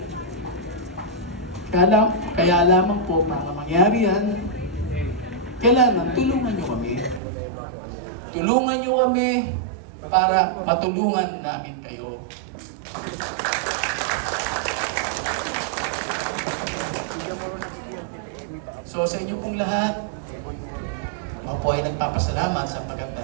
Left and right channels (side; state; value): left; drops out; at 7.2 s